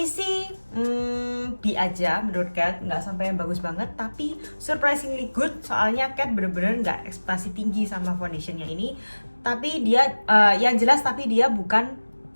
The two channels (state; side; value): inverted; both; correlation -1.00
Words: sih B aja menurut Kat, nggak sampai yang bagus banget, tapi surprisingly good. Soalnya Kat bener-bener nggak ekspektasi tinggi sama foundationnya ini. Tapi dia yang jelas, tapi dia bukan